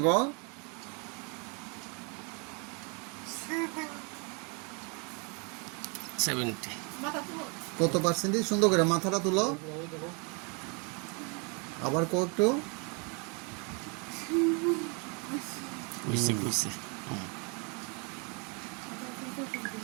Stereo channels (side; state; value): left; quieter; 34.3 dB